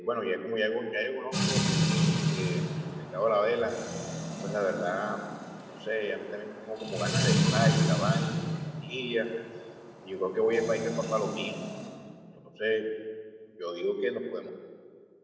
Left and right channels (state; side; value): identical; both; correlation 1.00